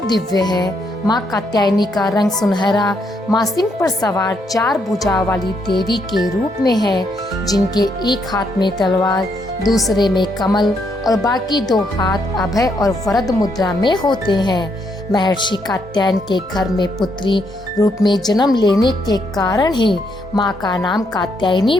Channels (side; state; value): both; normal; correlation 0.75